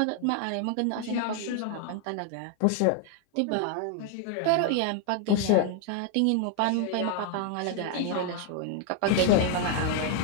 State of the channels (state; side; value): different; both; correlation 0.00